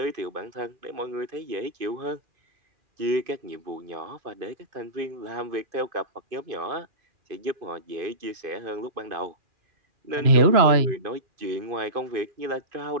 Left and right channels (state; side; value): late; left; 2.4 ms